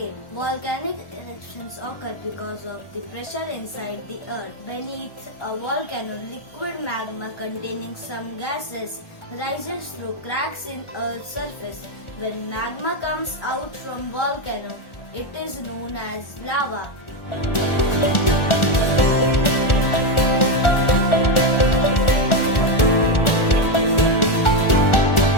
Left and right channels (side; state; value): right; late; 1.4 ms